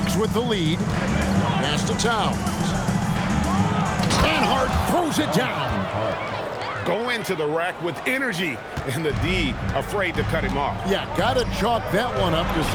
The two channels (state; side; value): identical; both; correlation 1.00